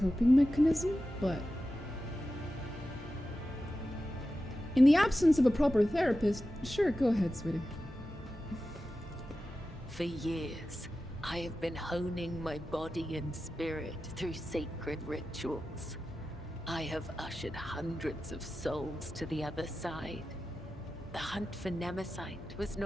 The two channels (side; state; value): both; normal; correlation 0.93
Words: mechanism, but in the absence of a proper therapist, sure, go ahead, sweetie. For years, I have been honing my body and spirit through sacred rituals. I have ushered hundreds of souls to the other side. The hunt for Nemesite was